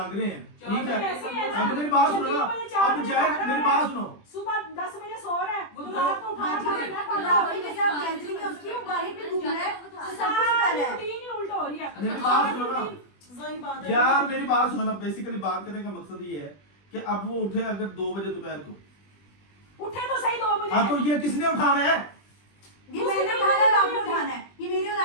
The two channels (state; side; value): late; right; 20 ms